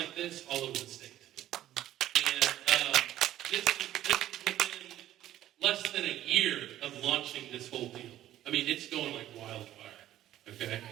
this all over the state. And this is within less than a year of launching this whole deal. I mean, it's going like wildfire, okay?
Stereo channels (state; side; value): quieter; left; 13.1 dB